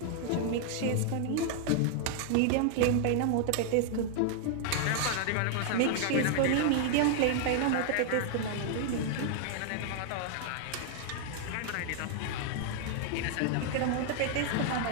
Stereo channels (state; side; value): different; both; correlation 0.00